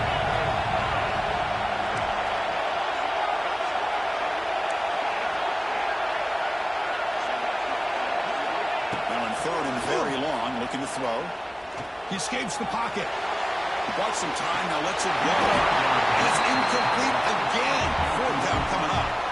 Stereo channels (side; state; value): both; identical; correlation 1.00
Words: Now in 3rd and very long, looking to throw. He escapes the pocket. He bought some time, now lets it go. And it's incomplete again. 4th down coming up.